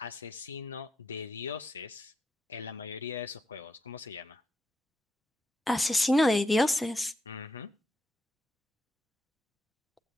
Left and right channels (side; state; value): both; normal; correlation 0.82